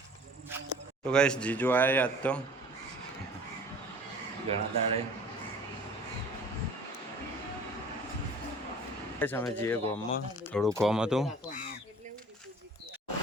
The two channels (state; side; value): normal; both; correlation 0.47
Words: તો ગાઈસ જીજુ આવ્યા આજ તો ઘણા દાડે. અમે જઈએ ગામમાં, થોડું કામ હતું.